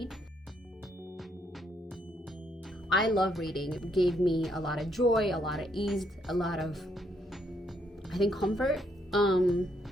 I love reading. It gave me a lot of joy, a lot of ease, a lot of, I think, comfort.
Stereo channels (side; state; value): both; normal; correlation 0.73